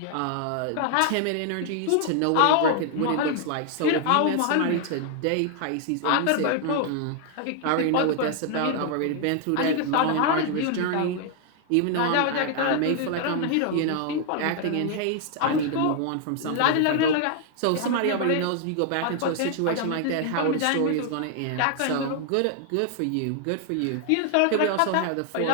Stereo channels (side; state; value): both; different; correlation 0.00